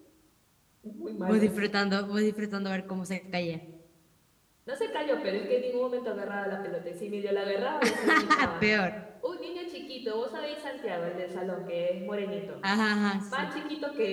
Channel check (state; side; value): identical; both; correlation 1.00